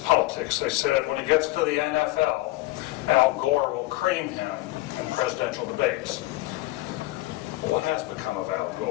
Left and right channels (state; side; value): quieter; right; 18.7 dB